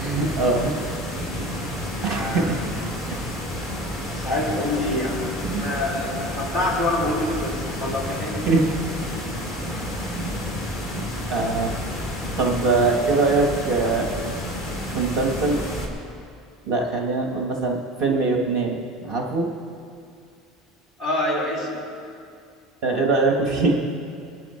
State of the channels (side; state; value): both; normal; correlation 0.34